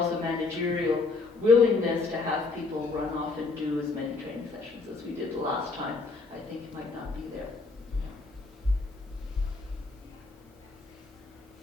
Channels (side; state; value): right; quieter; 3.9 dB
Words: managerial willingness to have people run off and do as many training sessions as we did the last time. I think it might not be there.